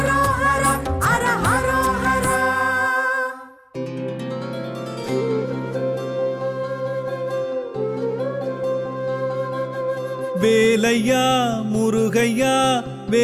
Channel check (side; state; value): both; identical; correlation 1.00